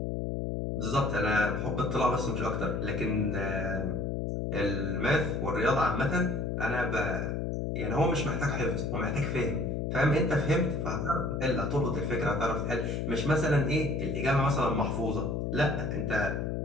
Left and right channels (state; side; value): noise; left; hum, 1 dB below the sound